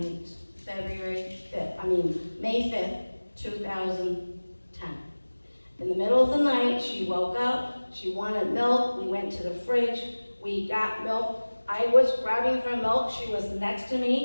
May 5th, 2010. In the middle of the night, she woke up, she wanted milk, we went to the fridge, we got milk. I was grabbing for milk, she was next to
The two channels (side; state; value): both; inverted; correlation -1.00